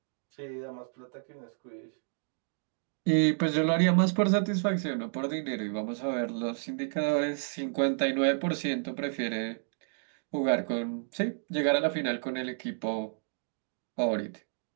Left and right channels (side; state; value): left; silent; digital silence